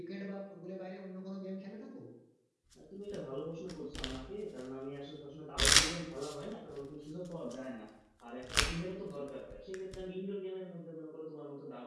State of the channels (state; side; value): identical; both; correlation 1.00